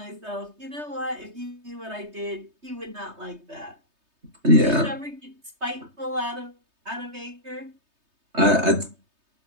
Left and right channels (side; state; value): left; late; 3.2 ms